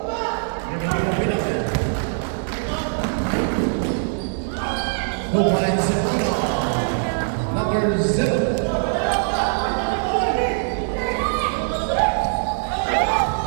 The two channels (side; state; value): left; silent; digital silence